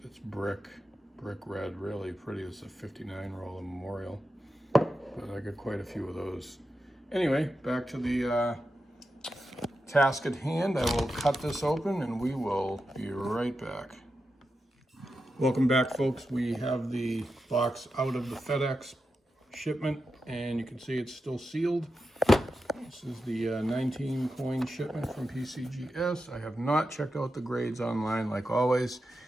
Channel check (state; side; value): normal; both; correlation 0.89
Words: it's brick red, really pretty. It's a 59 roller Memorial, but I got quite a few of those. Anyway, back to the task at hand. I will cut this open and we will be right back. Welcome back, folks. We have the box out of the FedEx shipment, and you can see it's still sealed. This is the 19 coin shipment from PCGS. I have not checked out the grades online like always.